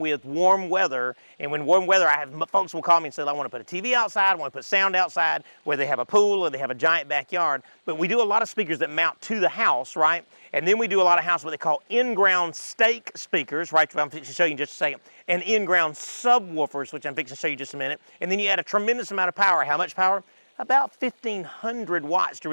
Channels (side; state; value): both; inverted; correlation -1.00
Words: warm weather, and when warm weather, folks will call me and say, I want to put a TV outside, I want to put sound outside, where they have a pool or they have a giant backyard. But we do a lot of speakers that mount to the house, right? And then we do a lot of house what they call in-ground stake speakers, right? I'm fixing to show you in just a second. And in-ground subwoofers, which I'm fixing to show you in just a minute. And then you add a tremendous amount of power. How much power? About 1,500 watts to